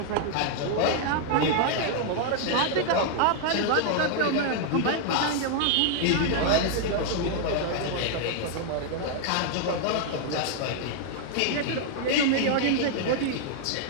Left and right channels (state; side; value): different; both; correlation 0.00